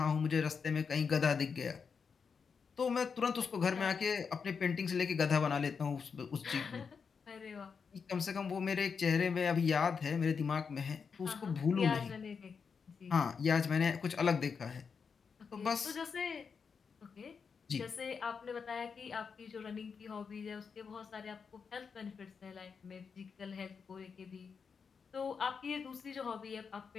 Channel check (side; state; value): right; quieter; 5.8 dB